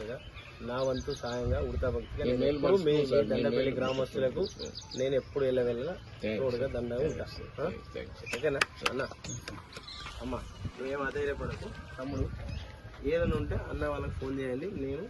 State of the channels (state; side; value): identical; both; correlation 1.00